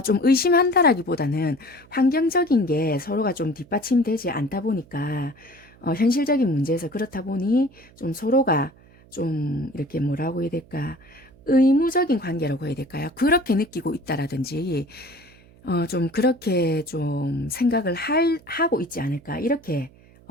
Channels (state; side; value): noise; right; hum, 26 dB below the sound